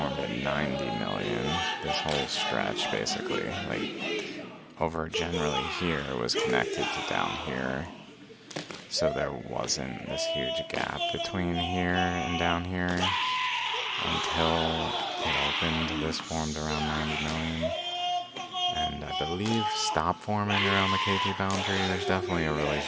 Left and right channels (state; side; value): identical; both; correlation 1.00